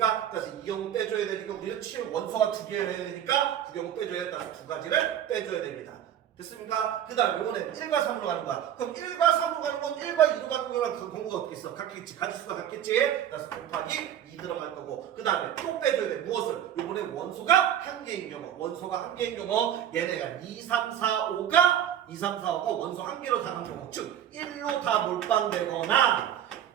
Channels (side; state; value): left; quieter; 10.3 dB